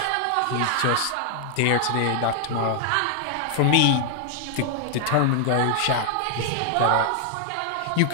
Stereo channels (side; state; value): both; different; correlation 0.00